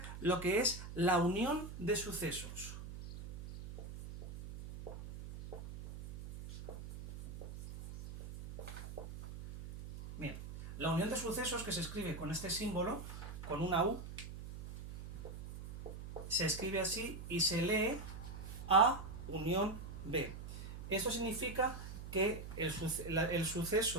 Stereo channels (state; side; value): noise; right; hum, 10 dB below the sound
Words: lo que es la unión de sucesos. Bien, la unión de sucesos, que se escribe con este símbolo, con una U, se escribe así y se lee A unión B. Esto significa que el